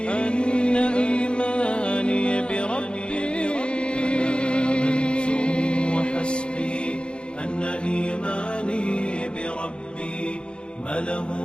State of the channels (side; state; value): right; late; 0.055 ms